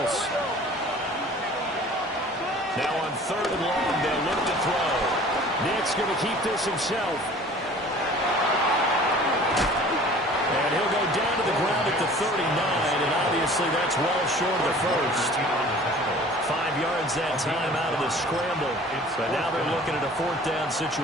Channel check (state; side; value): normal; both; correlation 0.47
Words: Now on 3rd and long, they'll look to throw. Nick's going to keep this himself. And he'll go down to the ground at the 39, and obviously that's well short of the first. 5 yards that time out of the scramble. But now they're looking at a 4th down